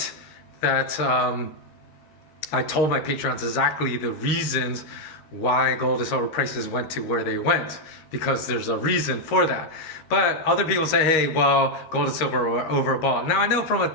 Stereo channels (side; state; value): right; late; 13 ms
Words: that I told my patrons exactly the reasons why gold and silver prices went to where they went, because there's a reason for that. But other people say, hey, well, gold and silver are overbought. Now I know from a